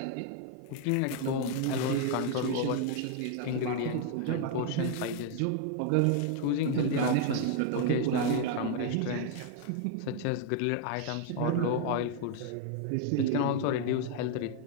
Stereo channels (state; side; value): different; both; correlation 0.00